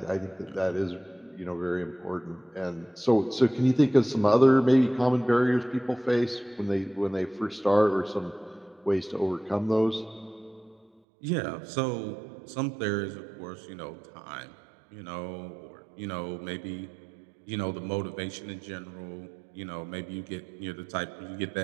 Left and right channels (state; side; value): drops out; left; at 10.9 s